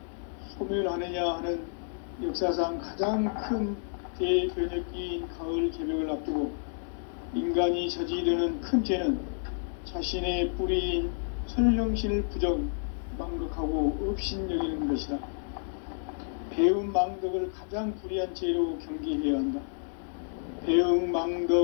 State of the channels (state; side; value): silent; right; digital silence